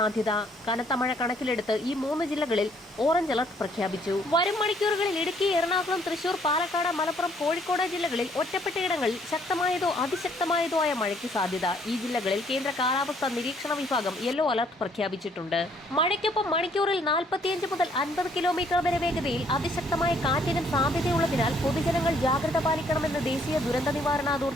കനത്ത മഴ കണക്കിലെടുത്ത് ഈ 3 ജില്ലകളിൽ ഓറഞ്ച് അലർട്ട് പ്രഖ്യാപിച്ചു. വരും മണിക്കൂറുകളിൽ ഇടുക്കി, എറണാകുളം, തൃശൂർ, പാലക്കാട്, മലപ്പുറം, കോഴിക്കോട് ജില്ലകളിൽ ഒറ്റപ്പെട്ടയിടങ്ങളിൽ ശക്തമായതോ അതിശക്തമായതോ ആയ മഴയ്ക്ക് സാധ്യത. ഈ ജില്ലകളിൽ കേന്ദ്ര കാലാവസ്ഥാ നിരീക്ഷണ വിഭാഗം യെല്ലോ അലർട്ട് പ്രഖ്യാപിച്ചിട്ടുണ്ട്. മഴയ്ക്കൊപ്പം മണിക്കൂറിൽ 45 മുതൽ 50 കിലോമീറ്റർ വരെ വേഗതയിൽ അതിശക്തമായ കാറ്റിനും സാധ്യതയുള്ളതിനാൽ പൊതുജനങ്ങൾ ജാഗ്രത പാലിക്കണമെന്ന് ദേശീയ ദുരന്ത നിവാരണ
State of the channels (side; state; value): both; normal; correlation 0.65